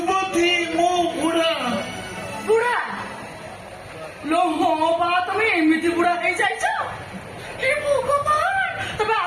ମୁଁ ବୁଢା। ବୁଢା ଲୋ, ହଁ ବା ତମେ ଏମିତି ବୁଢା ହେଇଯାଇଛ? ଏ ଭଗବାନ, ତମେ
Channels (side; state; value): both; identical; correlation 1.00